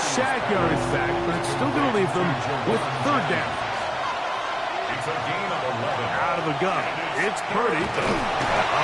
yardage back, but it's still going to leave them with 3rd down. It's a gain of 11. Out of the gun, it's Purdy.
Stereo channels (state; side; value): identical; both; correlation 1.00